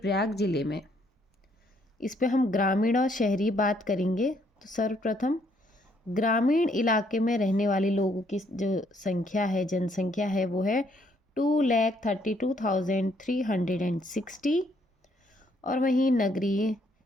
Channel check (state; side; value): normal; both; correlation 0.69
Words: जिले में। इस पे हम ग्रामीण और शहरी बात करेंगे। तो सर्वप्रथम ग्रामीण इलाके में रहने वाले लोगों की जो संख्या है, जनसंख्या है, वो है 2,32,360। और वहीं नगरीय,